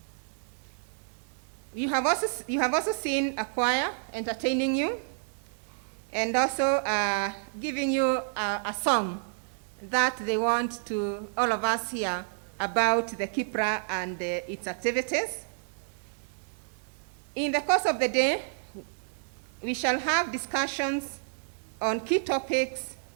You have also seen a choir entertaining you, and also giving you a song that they want to all of us hear about the KIPPRA and its activities. In the course of the day, we shall have discussions on key topics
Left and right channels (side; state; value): left; silent; digital silence